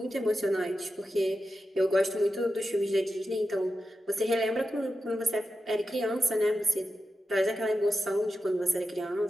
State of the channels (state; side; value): normal; both; correlation 0.90